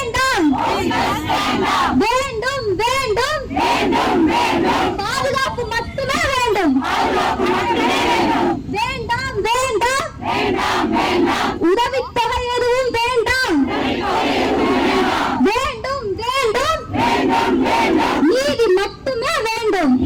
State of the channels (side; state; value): both; identical; correlation 1.00